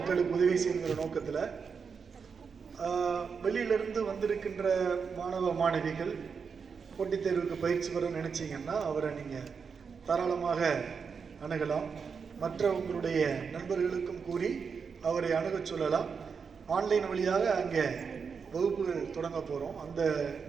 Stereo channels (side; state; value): left; quieter; 5.9 dB